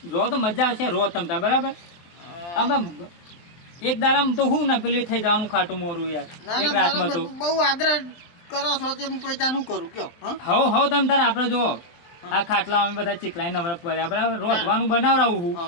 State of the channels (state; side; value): late; right; 23 ms